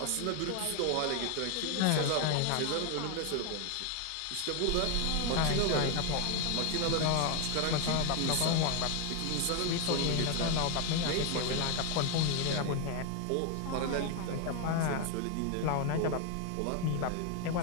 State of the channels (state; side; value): different; both; correlation 0.01